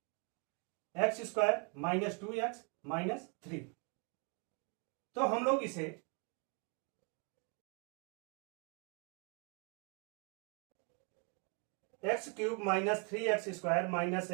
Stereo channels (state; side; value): quieter; left; 36.3 dB